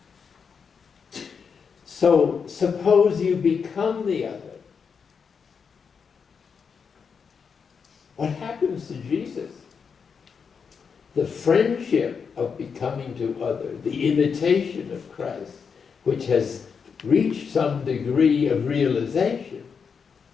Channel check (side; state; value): right; quieter; 6.1 dB